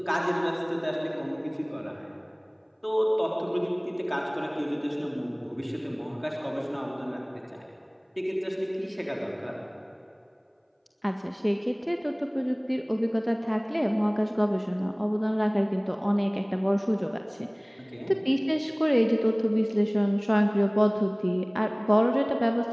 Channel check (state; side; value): identical; both; correlation 1.00